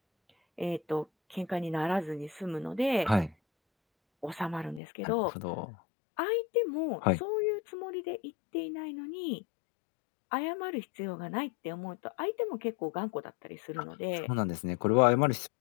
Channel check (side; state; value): right; drops out; at 4.8 s